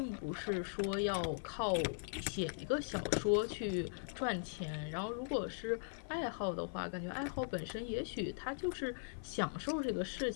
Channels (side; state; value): right; silent; 51 dB below the other